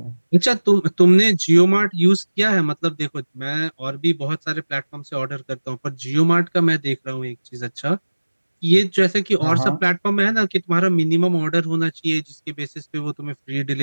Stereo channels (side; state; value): both; inverted; correlation -1.00